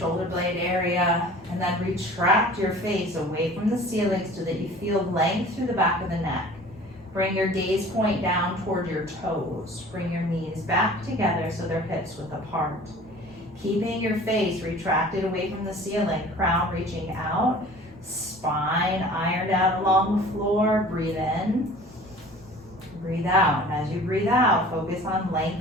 blade area, and then retract your face away from the ceiling so that you feel length through the back of the neck. Bring your gaze point down toward your toes. Bring your knees back together so they're hips width apart. Keeping your face retracted away from the ceiling, crown reaching out, spine ironed out along the floor. Breathe in, breathe out. And as you breathe out, focus on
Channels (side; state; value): both; normal; correlation 0.45